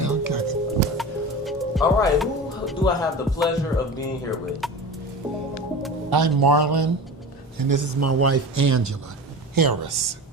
Okay. All right, who do I have the pleasure of being here with? I'm Marlon, and this is my wife Angela Harris.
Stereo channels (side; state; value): both; normal; correlation 0.31